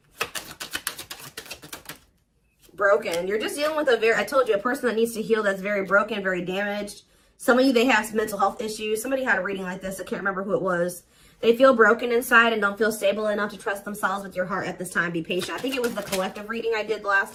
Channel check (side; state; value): both; identical; correlation 1.00